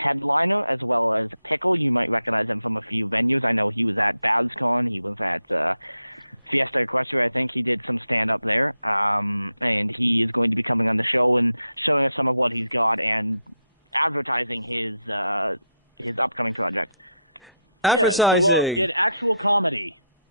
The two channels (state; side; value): inverted; both; correlation -0.81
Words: as well as Pickle. You might recognize him from a few venues. I know he was at BabsCon. He was at Fiesta Equestria. I think he did some stand up there. And he is going to be coming on the show and showing us some of what he's got and advertising his upcoming project. Yeah, so we'll get actual comedy.